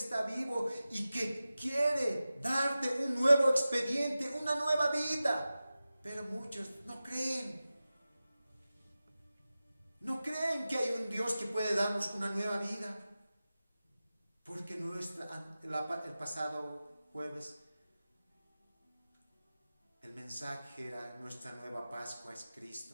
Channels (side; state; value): both; inverted; correlation -0.95